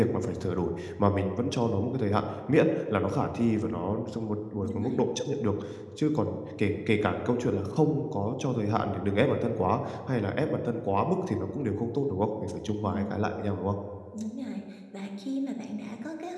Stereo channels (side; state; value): both; identical; correlation 1.00